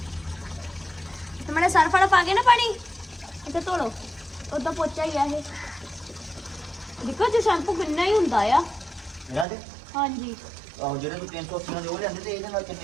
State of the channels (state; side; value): drops out; left; at 9.5 s